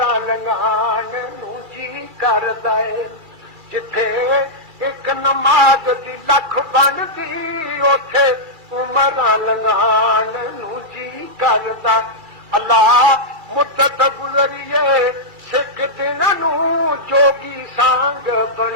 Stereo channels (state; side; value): late; left; 2.3 ms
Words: लंघाण नूं जी करदा है। जिथे एक नमाज दी लख बनदी उथे उमरां लंघाण नूं जी करदा। अल्लाह मुद्दत गुज़रिए सिख दिन नूं जोगी सांग